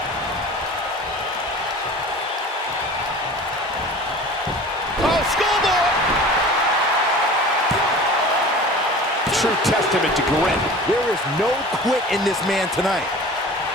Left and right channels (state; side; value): normal; both; correlation 0.40